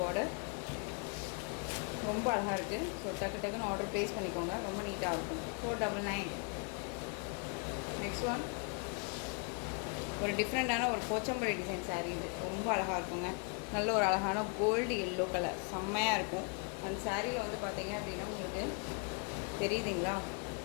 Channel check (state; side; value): quieter; right; 36.5 dB